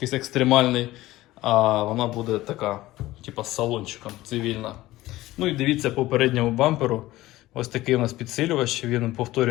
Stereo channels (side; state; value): right; quieter; 17.0 dB